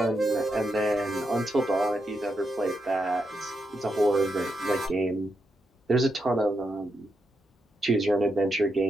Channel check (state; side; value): normal; both; correlation 0.83